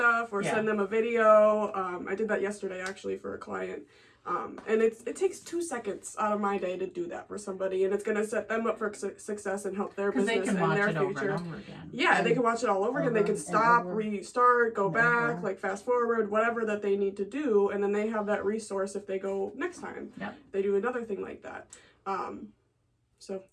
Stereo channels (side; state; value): both; identical; correlation 1.00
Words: or send them a video. I did that yesterday actually for a client. And it takes 2 seconds out of my day to do that for somebody, and it's going to set them up for success and help their business and their future. Over and over again. Yeah, they can watch it all over again. They can stop, restart, go back, fast forward, whatever that they need to do, and then they have that resource if they go next time. Yep. They do another thing like that. So